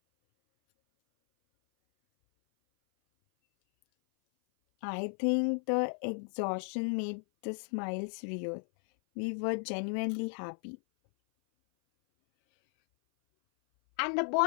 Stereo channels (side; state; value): right; silent; 55 dB below the other